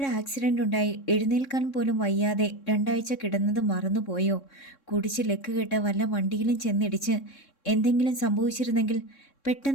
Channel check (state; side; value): late; right; 3.6 ms